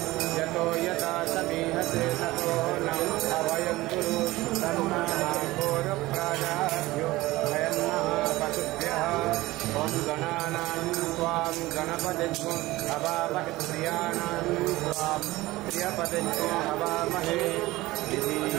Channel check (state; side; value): quieter; left; 18.9 dB